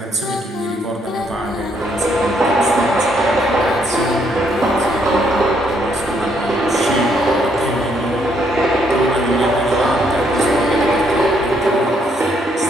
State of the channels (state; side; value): normal; both; correlation 0.71